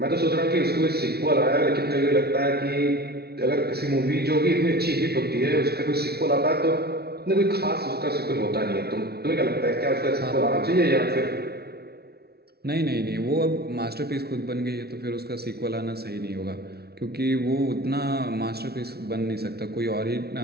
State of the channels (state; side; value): late; left; 0.46 ms